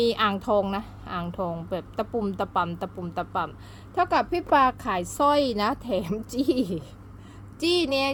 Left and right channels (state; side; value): identical; both; correlation 1.00